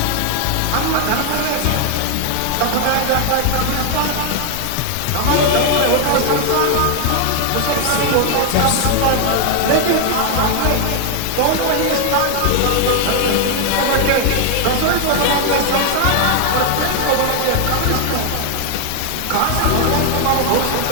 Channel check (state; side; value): different; both; correlation 0.00